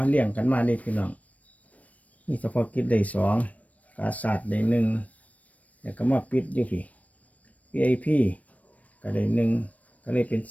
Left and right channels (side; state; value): right; late; 0.068 ms